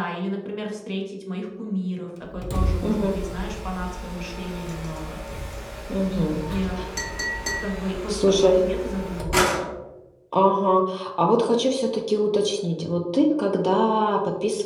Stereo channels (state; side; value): identical; both; correlation 1.00